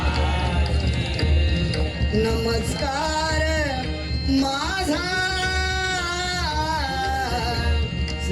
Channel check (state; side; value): identical; both; correlation 1.00